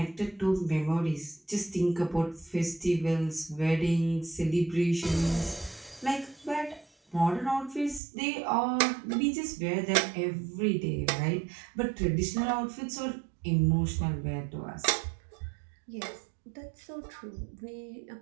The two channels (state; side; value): drops out; left; at 8.0 s